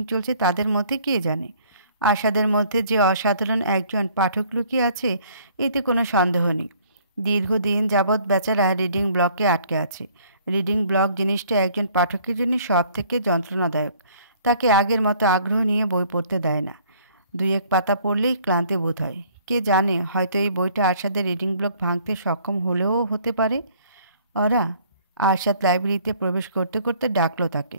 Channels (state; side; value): inverted; both; correlation -0.58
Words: চলছে তাদের মধ্যে কে জানে। আশাদের মধ্যে যে অসাধারণ একজন পাঠক লুকিয়ে আছে এতে কোনো সন্দেহ নেই। দীর্ঘদিন যাবৎ বেচারা রিডিং ব্লকে আটকে আছে। রিডিং ব্লক জিনিসটা একজন পাঠকের জন্য সব থেকে যন্ত্রণাদায়ক। তাকে আগের মতো আগ্রহ নিয়ে বই পড়তে দেয় না। দুই এক পাতা পড়লেই ক্লান্তি বোধ হয়। কে জানে, হয়তো এই বইটা আরশাদের রিডিং ব্লক ভাঙতে সক্ষম হলেও হতে পারে। ওরা আরশাদ লাইব্রেরিতে প্রবেশ করতে করতে ডাকলো